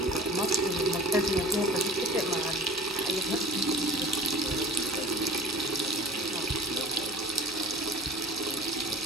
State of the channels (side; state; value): both; normal; correlation 0.41